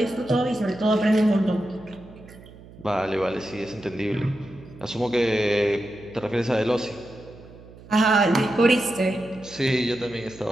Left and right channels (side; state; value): right; noise; hum, 20 dB below the sound